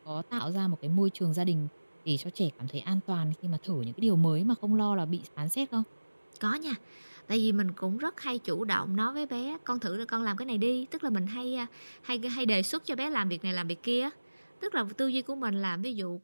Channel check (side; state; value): both; inverted; correlation -1.00